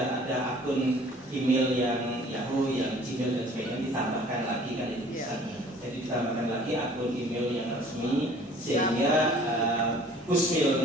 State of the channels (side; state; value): both; normal; correlation 0.52